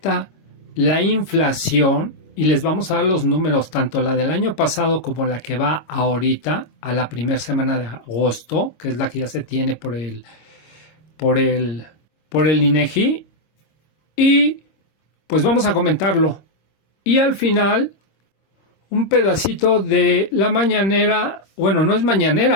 la inflación y les vamos a dar los números, tanto la del año pasado como la que va ahorita a la primera semana de agosto, que es la que ya se tiene por el INEGI. Y pues vamos a comentarlo. Y al final, un pedacito de la mañanera, bueno, no es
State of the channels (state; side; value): late; right; 26 ms